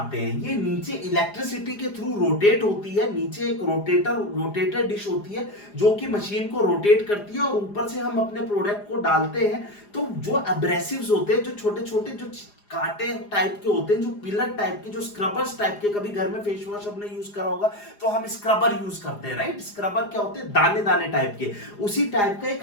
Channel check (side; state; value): right; late; 4.9 ms